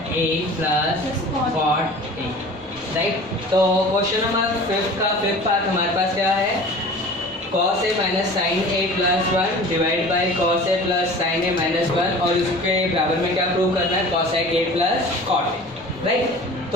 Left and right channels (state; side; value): normal; both; correlation 0.41